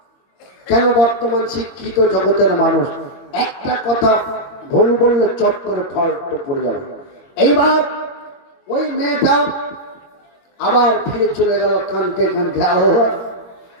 কেন বর্তমান শিক্ষিত জগতের মানুষ একটা কথা ভুল বললে চট করে ফল্ট পড়ে যাবে। এইবার ওই মেয়েটা আবার ফিরে চলে গেল কাঁদতে কাঁদতে, আল্লাহ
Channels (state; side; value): late; right; 22 ms